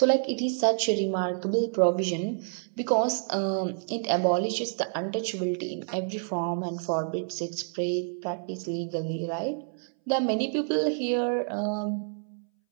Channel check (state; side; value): silent; left; 59 dB below the other